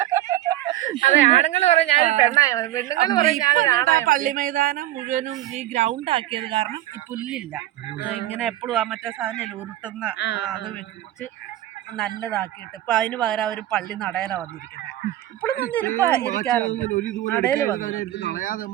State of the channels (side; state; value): left; quieter; 14.1 dB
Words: പള്ളി മൈതാനം മുഴുവനും ഈ ഗ്രൗണ്ട് ആക്കിയത് കാരണം ഈ പുല്ലില്ല, ഇങ്ങനെ എപ്പോഴും ആ മറ്റേ സാധനം ഉരുട്ടുന്ന അത് വെച്ച് നല്ലതാക്കിയിട്ട് ഇപ്പൊ അതിന് പകരം അവര് പള്ളി നടയില വന്നിരിക്കുന്നത്. ഇപ്പോഴും ഇരിക്കാറുണ്ട് നടയില് വന്ന്